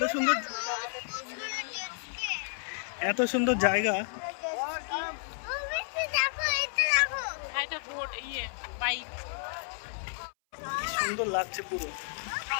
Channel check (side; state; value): right; silent; 57 dB below the other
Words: সুন্দর, এত সুন্দর জায়গা, সুন্দর লাগছে পুরো।